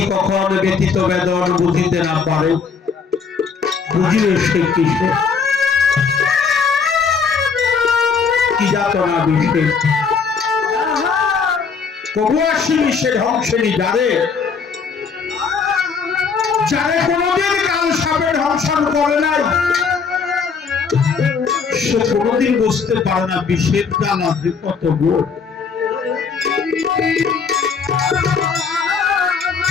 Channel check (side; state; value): right; quieter; 5.6 dB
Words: কখন ব্যতীত বেদন বুঝিতে না পারে, বুঝিলে সে কিসে কি যাতনা বিষে, কবু আসিনি সে ধ্বংসেনি যারে, যারে কোনদিন কাল সাপে ধ্বংসন করে নাই, সে কোনদিন বুঝতে পারে না বিষের জ্বালা যে কত গোড়।